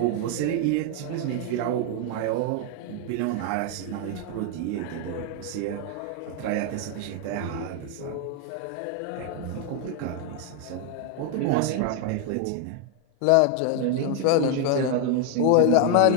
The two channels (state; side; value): different; both; correlation 0.01